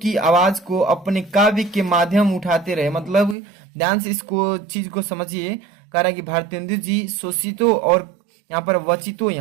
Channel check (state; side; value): drops out; left; at 3.4 s